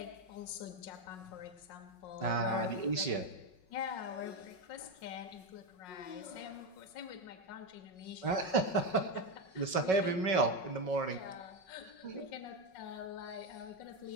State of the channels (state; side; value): late; right; 5.3 ms